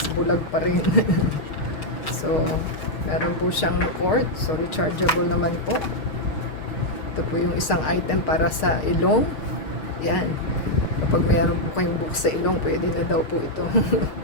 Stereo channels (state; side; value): late; right; 6.4 ms